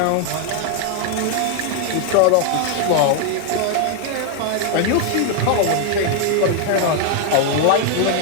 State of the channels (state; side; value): different; both; correlation 0.00